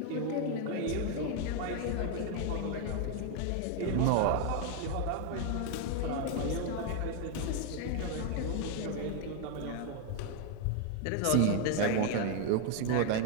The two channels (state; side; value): different; both; correlation 0.01